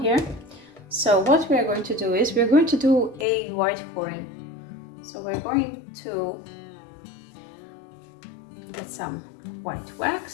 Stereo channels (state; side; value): drops out; right; at 3.2 s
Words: So what we are going to do is we're going to do a white pouring. So we're going to get some white